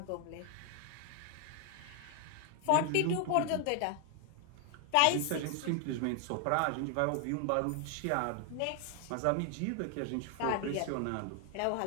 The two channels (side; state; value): both; different; correlation 0.00